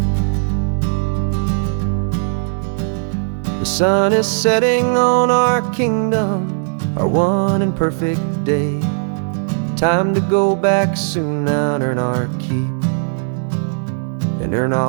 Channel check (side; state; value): left; silent; 67 dB below the other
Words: The sun is setting on our kingdom, our one and perfect day. Time to go back soon now and earn our keep and earn